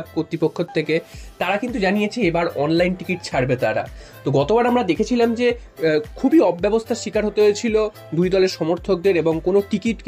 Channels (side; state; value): both; identical; correlation 1.00